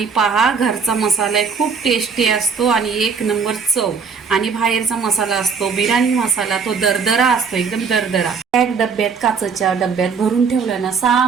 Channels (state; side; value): quieter; left; 5.7 dB